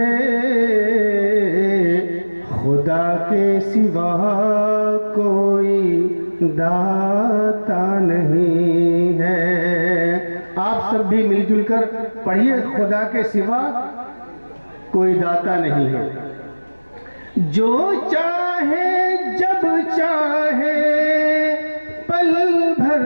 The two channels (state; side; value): inverted; both; correlation -1.00